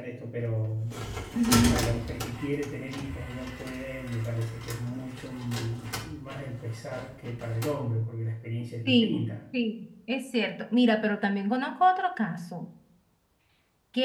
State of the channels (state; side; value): identical; both; correlation 1.00